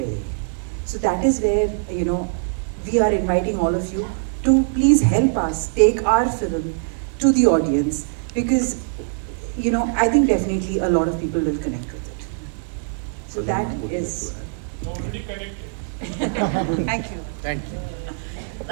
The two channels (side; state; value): left; silent; 57 dB below the other